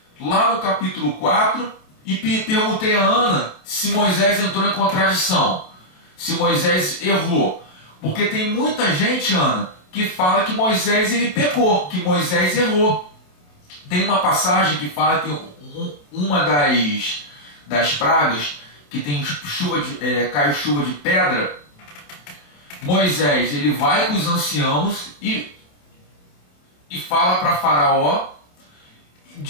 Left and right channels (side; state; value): right; late; 27 ms